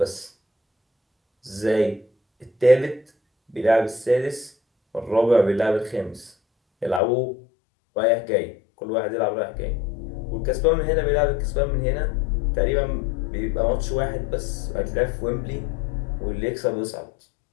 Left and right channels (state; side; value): drops out; right; at 7.0 s